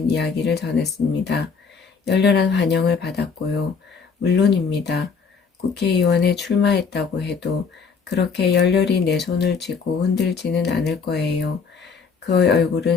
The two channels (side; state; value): right; quieter; 5.5 dB